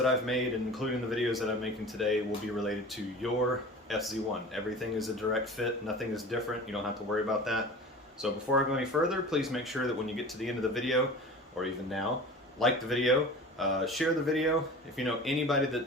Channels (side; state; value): both; normal; correlation 0.38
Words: I've made, including the videos that I'm making today, will be related to your FZ1. Everything is a direct fit, nothing is different, you don't have to worry about that. So before I go any further, please make sure that when you get to the end of the video, or even now, like the video, share the video. If you know anybody